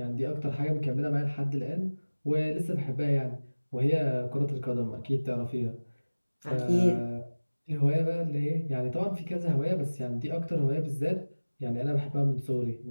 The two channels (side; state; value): both; inverted; correlation -1.00